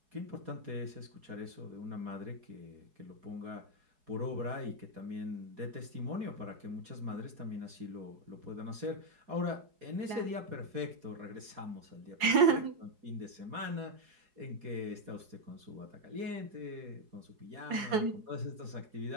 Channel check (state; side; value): late; left; 4.8 ms